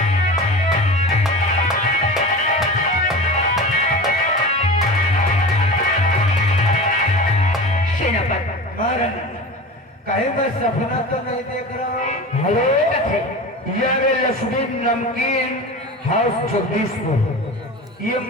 कहीं मैं सपना तो नहीं देख रहा हूँ? हेलो, यार लक्ष्मी नमकीन हाउस जगदीशपुर, ये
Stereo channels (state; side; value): normal; both; correlation 0.32